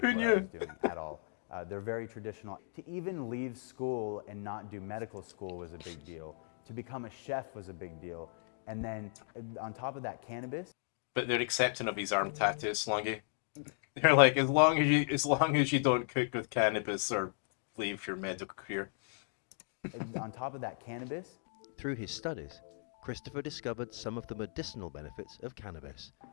Who what I knew? was doing at all. They're very traditional. To even leave school and not do medical school was a big deal. To become a chef was a big deal. And then on top of that, cannabis. But they're accepting of his arm tattoos, Slongi. They're like, as long as you don't cook with cannabis or leave your medical career. On top of that, cannabis. Through his studies, Christopher discovered some of the medicinal benefits of cannabis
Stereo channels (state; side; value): silent; right; 54 dB below the other